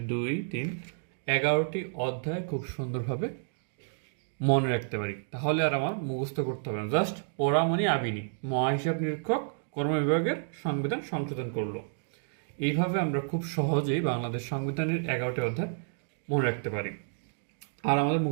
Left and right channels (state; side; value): silent; left; digital silence